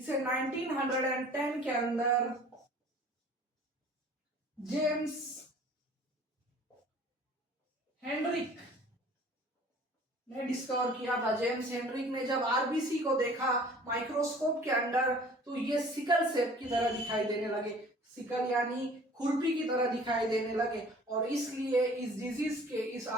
1910 के अंदर जेम्स हेनरिक ने डिस्कवर किया था। जेम्स हेनरिक ने जब आरबीसी को देखा माइक्रोस्कोप के अंदर, तो ये सिकल सेप की तरह दिखाई देने लगे। सिकल यानी खुरपी की तरह दिखाई देने लगे, और इसलिए इस डिजीज के, इस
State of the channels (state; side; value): normal; both; correlation 0.49